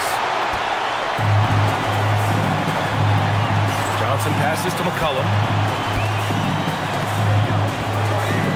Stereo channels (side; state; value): both; identical; correlation 1.00